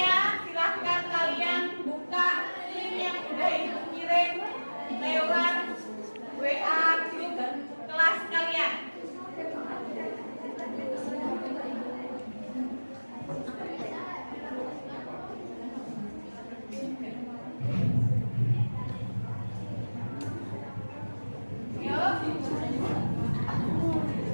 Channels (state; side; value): inverted; both; correlation -1.00